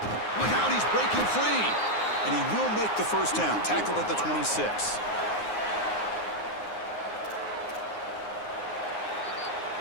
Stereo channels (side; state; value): right; late; 9.6 ms